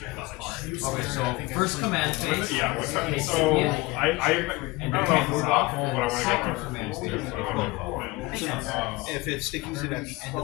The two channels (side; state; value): right; quieter; 21.7 dB